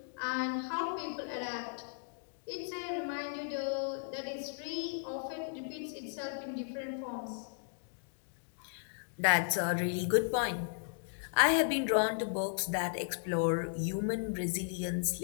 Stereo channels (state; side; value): silent; right; digital silence